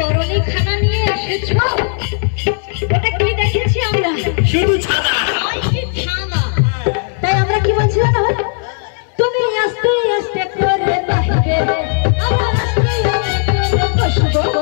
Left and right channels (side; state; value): right; silent; 58 dB below the other